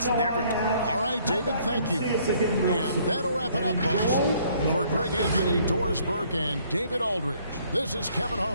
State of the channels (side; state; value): both; inverted; correlation -0.63